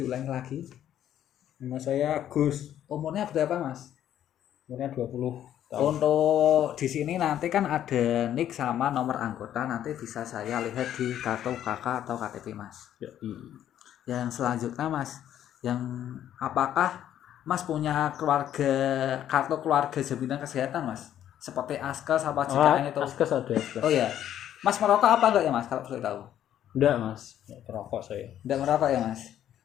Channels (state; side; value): quieter; right; 11.0 dB